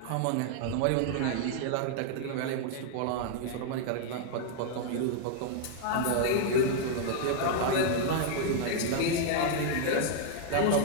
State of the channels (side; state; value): both; different; correlation 0.00